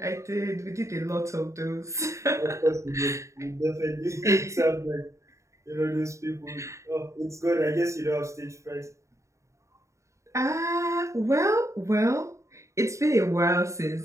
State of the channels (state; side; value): late; left; 0.14 ms